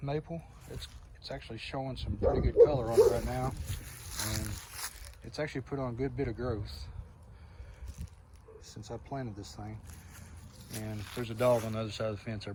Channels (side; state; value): both; identical; correlation 1.00